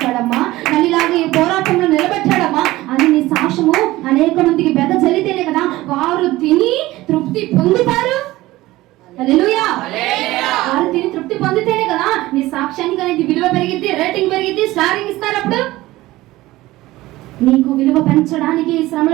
నన్ను ఇలాగ ఈ పోరాటంలో నిలబెట్టాడమ్మా అని నీ సాక్ష్యము అనేక మందికి బెద చల్లితేనే కదా వారు తిని తృప్తి పొందుతారు. హల్లెలూయా. వారు తిని తృప్తి పొందితేనే కదా నీ సాక్ష్యానికి అనేది విలువ పెరిగిద్ది, రేటింగ్ పెరిగిద్ది, స్టారింగ్ ఇస్తారు. అప్పుడు నీకు విలువ పెంచడానికి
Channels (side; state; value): left; quieter; 17.8 dB